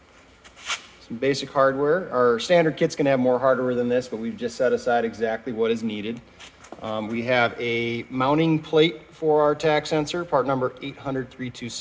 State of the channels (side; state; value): both; identical; correlation 1.00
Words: some basic hardware. Our standard kit's gonna have more hardware than this, but we've just set aside exactly what is needed. We have a mounting plate for our TAC sensor, part number